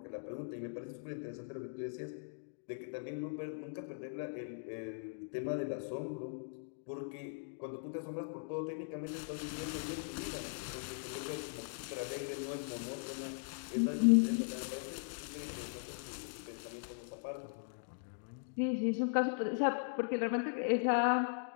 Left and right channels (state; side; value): silent; right; digital silence